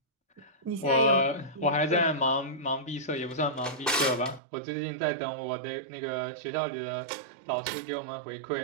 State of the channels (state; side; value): drops out; left; at 4.4 s